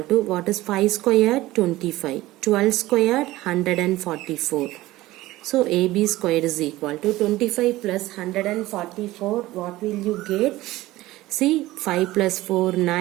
to what is 5 squared? 25. 12 squared? 144. So AB squared is equal to 25 plus 144. What will you get? See, 5 plus 4,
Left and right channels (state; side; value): quieter; left; 17.4 dB